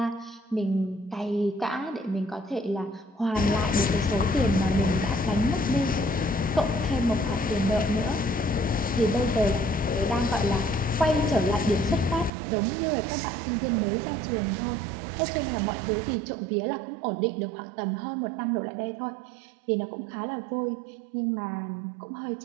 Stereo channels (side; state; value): left; drops out; at 12.3 s